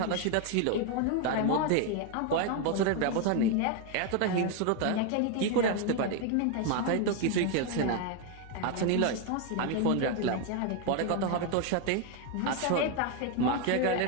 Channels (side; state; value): both; different; correlation 0.01